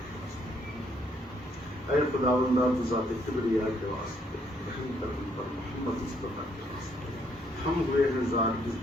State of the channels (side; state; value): both; normal; correlation 0.70